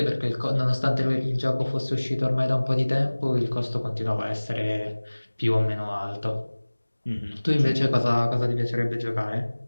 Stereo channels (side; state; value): both; inverted; correlation -1.00